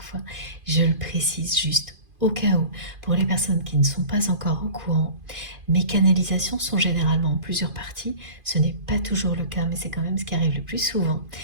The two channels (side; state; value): left; late; 2.5 ms